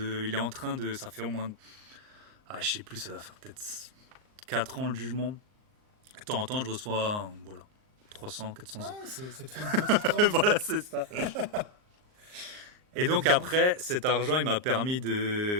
est en train de. Ça fait au moins. Ah, je sais plus, ça doit faire peut-être 4 ans le jugement. De temps en temps, je reçois voilà, 300, 400 Ah, euros. ça te fait une petite rente, Voilà, quoi. c'est ça. Eh Et ben, donc dis donc. après, cet argent, il m'a permis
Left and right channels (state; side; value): late; left; 38 ms